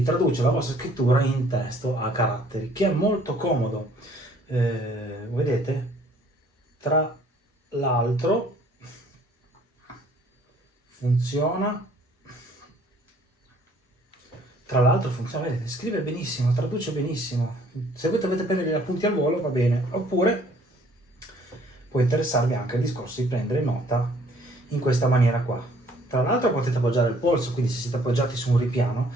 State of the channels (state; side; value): normal; both; correlation 0.59